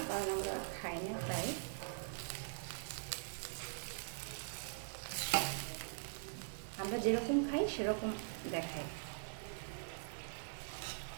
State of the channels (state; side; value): silent; left; digital silence